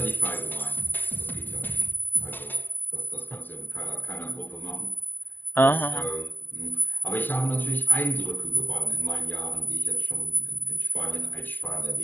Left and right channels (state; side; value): late; right; 0.093 ms